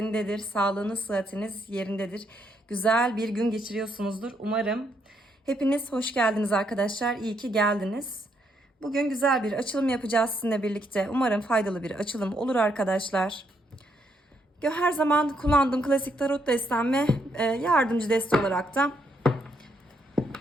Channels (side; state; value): both; normal; correlation 0.75